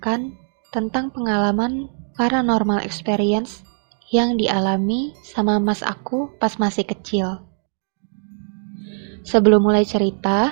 tentang pengalaman paranormal experience yang dialami sama mas aku pas masih kecil. Sebelum mulai cerita,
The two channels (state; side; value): silent; left; digital silence